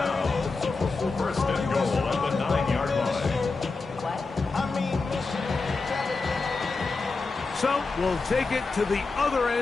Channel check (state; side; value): quieter; right; 4.0 dB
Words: 1st and goal at the 9-yard line. So we'll take it to the other